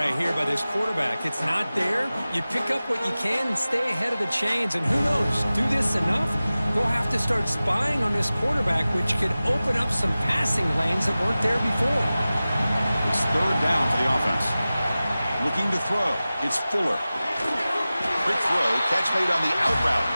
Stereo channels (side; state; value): both; inverted; correlation -0.96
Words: here by this quarterback. It's not there. You pick up what you can and stay ahead of the chains. And who knows, do this enough, they'll have to start spying on this quarterback, which could open up some passing lanes that weren't there before. It's third down for the offense. Looking to throw. It's Fuller. Quick throw, catch made on the out route.